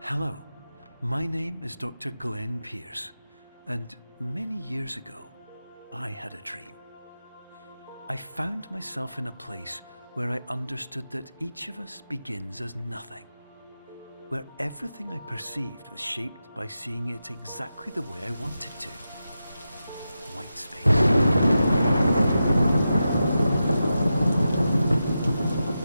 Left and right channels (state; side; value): inverted; both; correlation -0.90